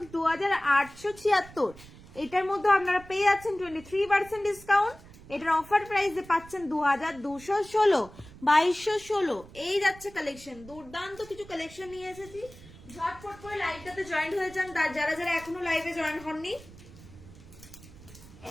2876। এটার মধ্যে আপনারা পেয়ে যাচ্ছেন 23% ডিসকাউন্ট। এটার অফার প্রাইসে পাচ্ছেন 2216, 2216। এই যাচ্ছে কালেকশন, দুর্দান্ত কিছু কালেকশন নিয়ে এসেছি, ঝটপট করে লাইভটাতে জয়েন হয়ে যান যারা যারা এখনো লাইভে জয়েন হননি।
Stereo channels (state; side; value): noise; right; rumble, 19 dB below the sound